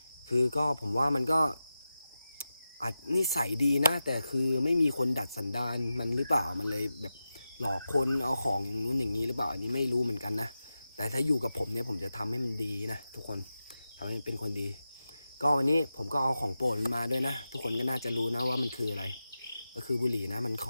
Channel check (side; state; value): both; inverted; correlation -0.92